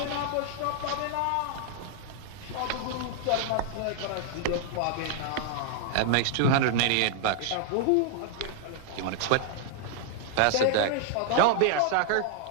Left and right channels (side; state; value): both; different; correlation 0.00